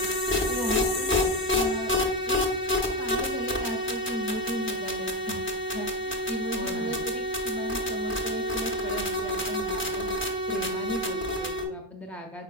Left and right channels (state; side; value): normal; both; correlation 0.12